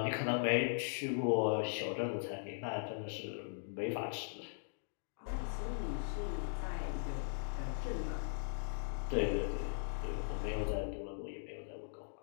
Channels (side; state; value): right; silent; digital silence